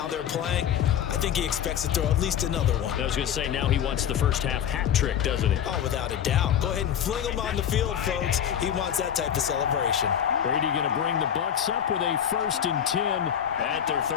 they're playing. I think he expects to throw at least another one. I was going to say, now he wants the first-half hat trick, doesn't he? Oh, without a doubt. Go ahead and fling him on the field, folks. He wants that type of celebration. Brady going to bring the Bucs up with a 1st and 10 at their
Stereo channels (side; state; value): right; quieter; 9.2 dB